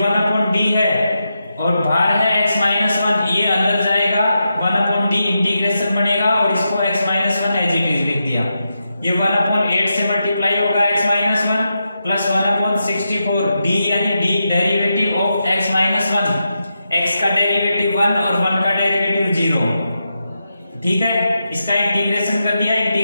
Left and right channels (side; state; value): both; inverted; correlation -0.87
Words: है और बाहर है x माइनस 1, ये अंदर जाएगा 1/d इंटीग्रेशन बनेगा और इसको x minus 1 as it is लिख दिया। ये 1/8 से मल्टीप्लाई होगा x माइनस 1 प्लस 1/64 d यानी d derivative of x minus 1, x का डेरिवेटिव 1 और 1 का डेरिवेटिव 0, ठीक है। इसका इंटीग्रेशन कर दिया,